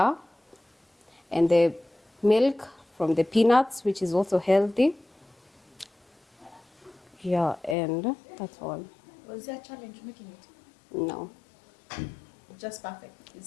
and the milk from the peanuts, which is also healthy. Yeah, and that's all. Was there a challenge making it? No. Just perfect. Is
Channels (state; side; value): drops out; right; at 7.8 s